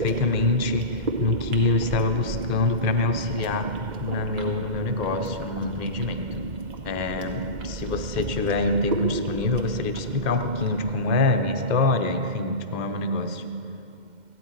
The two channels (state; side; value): late; left; 2.1 ms